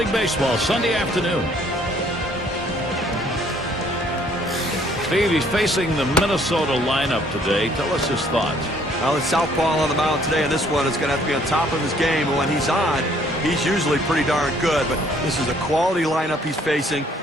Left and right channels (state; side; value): normal; both; correlation 0.62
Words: Baseball Sunday afternoon. Steve, he's facing the Minnesota lineup today. Tell us his thoughts. Well, it's southpaw on the mound today, and this one is going to have to be on top of his game. And when he's on, he's usually pretty darn good. But this is a quality lineup he's facing,